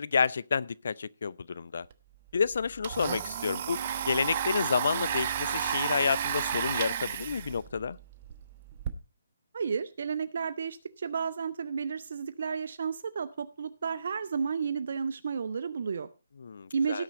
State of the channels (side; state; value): both; inverted; correlation -0.76